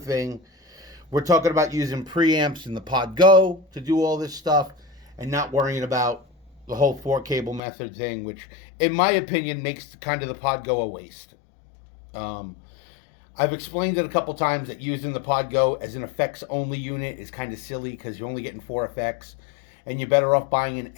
We're talking about using preamps in the PodGo to do all this stuff and not worrying about the whole 4-cable method thing, which in my opinion makes kind of the PodGo a waste. I've explained it a couple times that using the PodGo as an effects only unit is kind of silly because you're only getting 4 effects. And you're better off buying an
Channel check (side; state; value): right; drops out; at 7.6 s